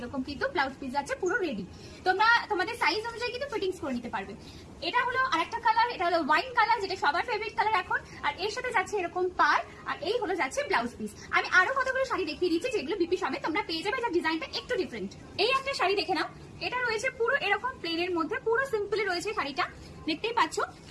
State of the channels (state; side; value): identical; both; correlation 1.00